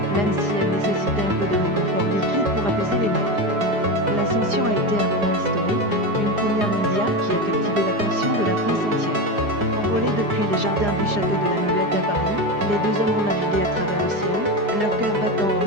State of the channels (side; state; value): left; late; 5.0 ms